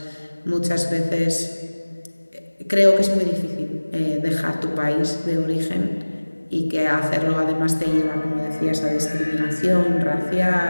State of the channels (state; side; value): inverted; both; correlation -1.00